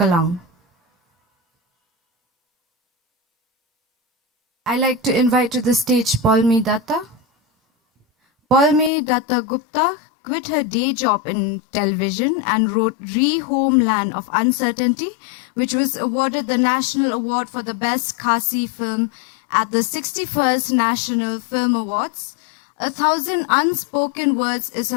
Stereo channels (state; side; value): drops out; right; at 8.9 s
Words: I'd like to invite to the stage Palmi Datta. Palmi Datta Gupta quit her day job in television and wrote Re-Homeland of Uncertainty, which was awarded the National Award for the Best Khasi film at the 61st National Film Awards. A Thousand Unspoken Words is